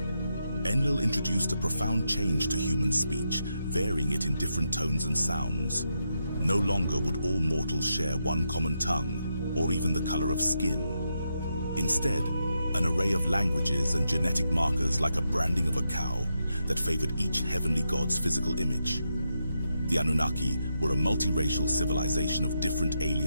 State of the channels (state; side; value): inverted; both; correlation -0.84